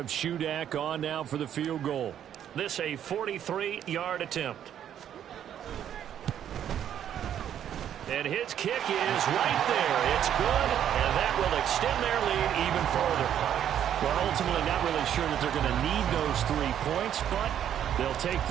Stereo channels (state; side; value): quieter; left; 10.0 dB